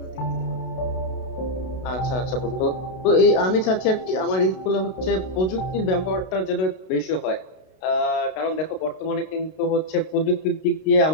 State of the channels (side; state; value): right; late; 32 ms